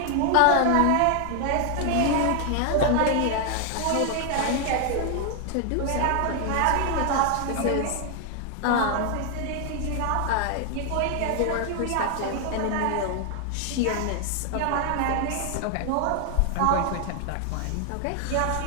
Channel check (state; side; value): different; both; correlation 0.00